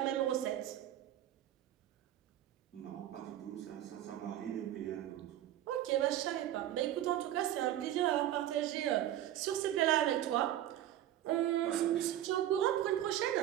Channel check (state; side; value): quieter; left; 12.5 dB